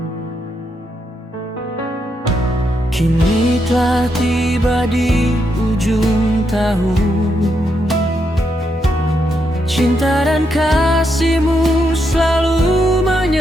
Kini telah tiba di ujung tahun, cinta dan kasih-Mu selalu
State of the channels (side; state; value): both; normal; correlation 0.80